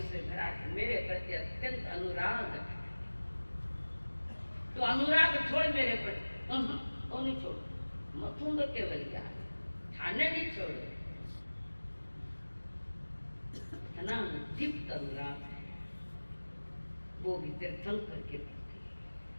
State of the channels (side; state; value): both; inverted; correlation -1.00